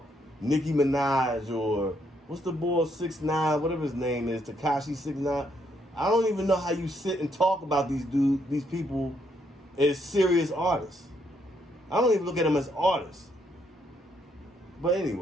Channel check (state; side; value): normal; both; correlation 0.73